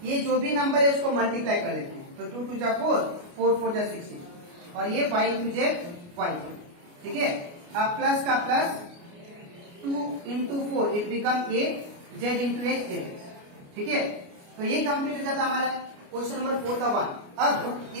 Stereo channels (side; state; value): left; late; 29 ms